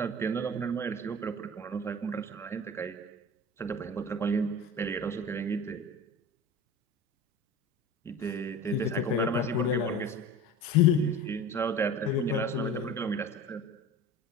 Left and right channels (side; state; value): both; normal; correlation 0.36